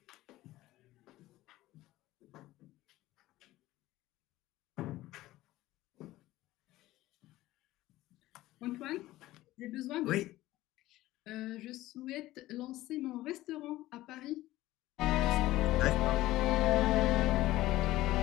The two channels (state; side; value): quieter; right; 16.5 dB